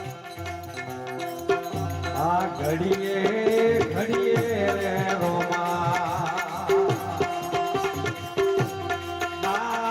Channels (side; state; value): both; identical; correlation 1.00